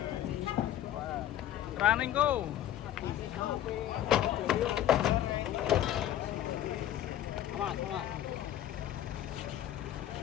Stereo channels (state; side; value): quieter; right; 12.1 dB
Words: Running go. Awas.